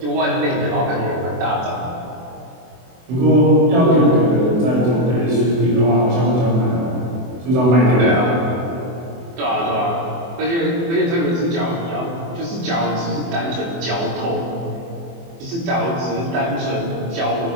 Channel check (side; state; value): left; late; 24 ms